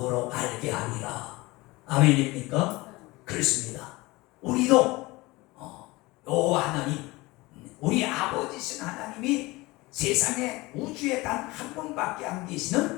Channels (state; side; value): quieter; right; 21.8 dB